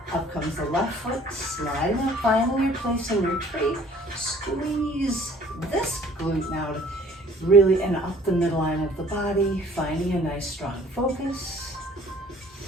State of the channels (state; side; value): normal; both; correlation 0.54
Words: Up comes the left foot, sliding up, finding your place in your tree. Squeeze this glute now to really and up the midline of the body, finding a nice strong focus.